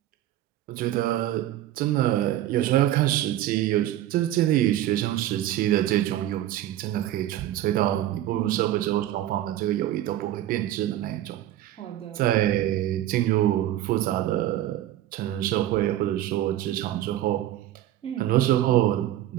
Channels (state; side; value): quieter; left; 13.3 dB